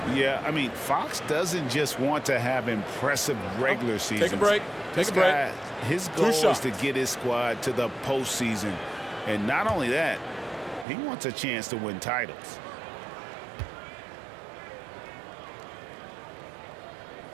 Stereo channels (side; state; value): left; drops out; at 10.9 s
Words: Yeah, I mean, Fox doesn't just want to have impressive regular seasons. Take a break. Take a break. His goal is to get his squad to the postseason. And not only that, he wants a chance to win titles.